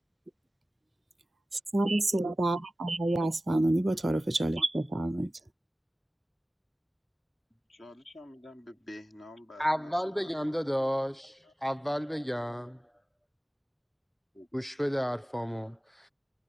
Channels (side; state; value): both; normal; correlation 0.97